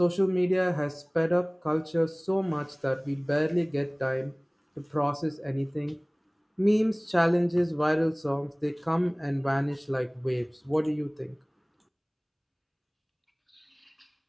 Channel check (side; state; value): both; identical; correlation 1.00